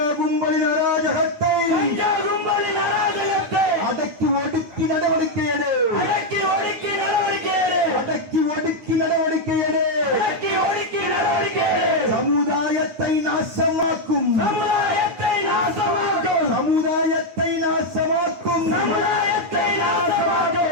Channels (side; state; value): left; late; 9.1 ms